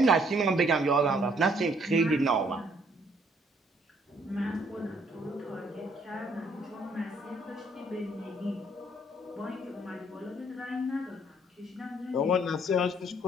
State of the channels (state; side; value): normal; both; correlation 0.65